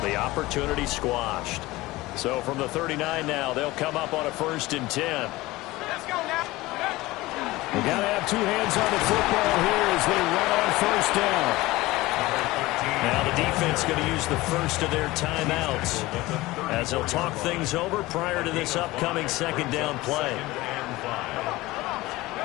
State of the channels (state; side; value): quieter; right; 19.4 dB